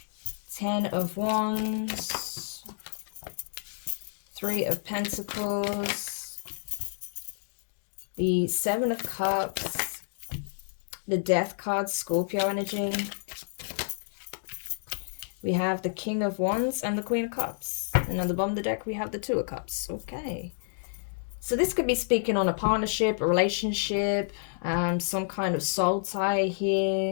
10 of Wands, 3 of Pentacles, the 7 of Cups, the Death card, Scorpio energy. We have the King of Wands and the Queen of Cups. And on the bottom of the deck, we have the 2 of Cups. Okay. So this could be speaking on a partnership, a relationship, some kind of soul tie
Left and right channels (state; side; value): silent; right; digital silence